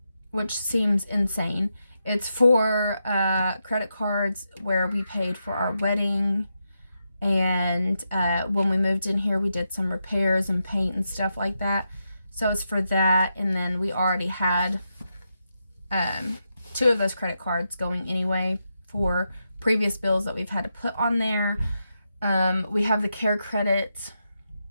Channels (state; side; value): inverted; both; correlation -0.85